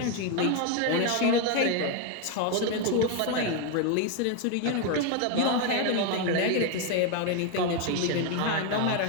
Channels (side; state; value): both; different; correlation 0.01